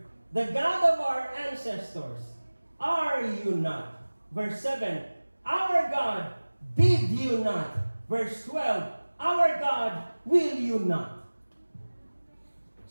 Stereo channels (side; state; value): both; inverted; correlation -1.00